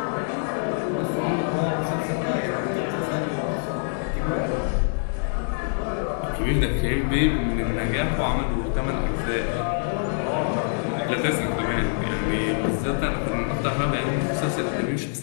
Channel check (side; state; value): right; silent; digital silence